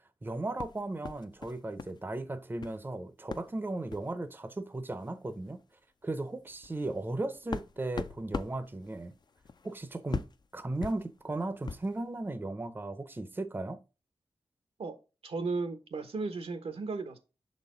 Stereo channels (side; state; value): both; normal; correlation 0.88